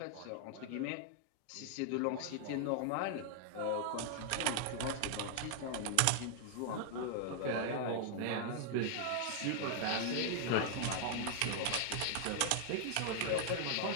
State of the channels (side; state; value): both; different; correlation 0.00